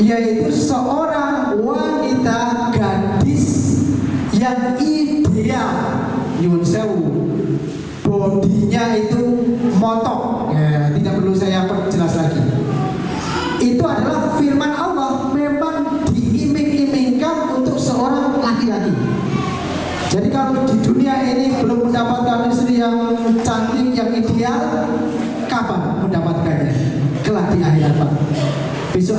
seorang wanita gadis yang ideal. Nyun sewu, bodinya itu montok, ya, tidak perlu saya perjelas lagi. Itu adalah firman Allah, memang diiming-imingkan untuk seorang laki-laki. Jadi kalau di dunia ini belum mendapatkan istri yang cantik, yang ideal, kapan mendapatkannya? Kelak di akhirat, Pak.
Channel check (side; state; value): both; identical; correlation 1.00